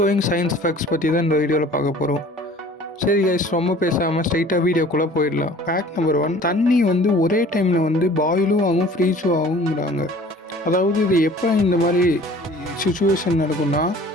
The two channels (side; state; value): both; normal; correlation 0.48